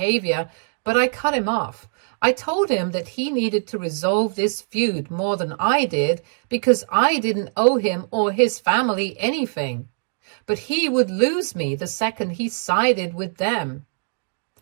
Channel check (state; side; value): silent; left; digital silence